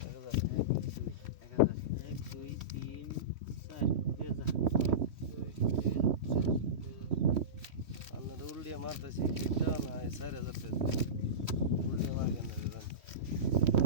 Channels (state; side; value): late; left; 3.1 ms